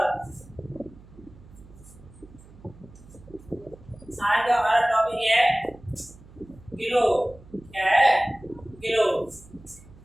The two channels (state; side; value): noise; right; hum, 22 dB below the sound